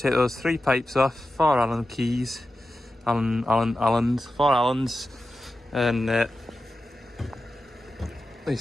those 3 pipes off, 4 Allen keys, four Allens, and he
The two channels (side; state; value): both; normal; correlation 0.92